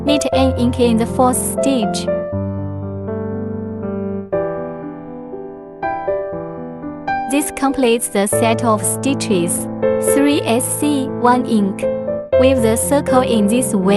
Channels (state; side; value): identical; both; correlation 1.00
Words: knit an ink in the 4th stitch. This completes the set of stitches, 3 SC, 1 ink. Weave the circle in this